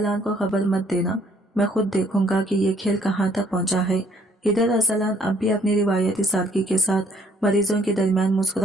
को खबर मत देना, मैं खुद देखूंगा कि ये खेल कहाँ तक पहुंचा है। इधर अरसलान अब भी अपनी रिवायती सादगी के साथ मरीजों के दरमियान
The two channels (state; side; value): normal; both; correlation 0.64